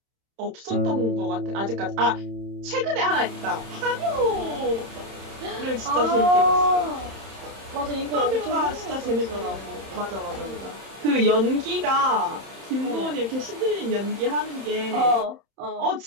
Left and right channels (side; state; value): left; late; 31 ms